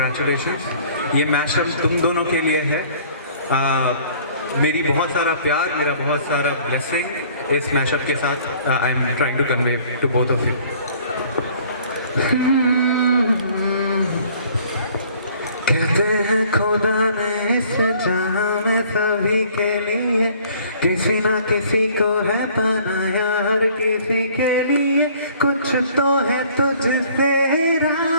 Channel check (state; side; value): inverted; both; correlation -0.55